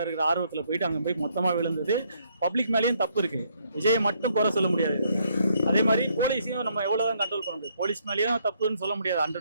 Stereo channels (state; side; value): inverted; both; correlation -0.70